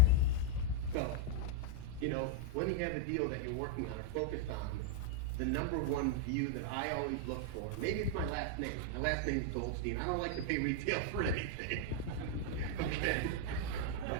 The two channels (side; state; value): both; different; correlation 0.00